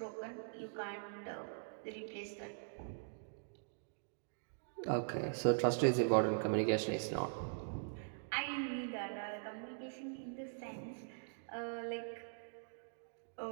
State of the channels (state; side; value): silent; left; digital silence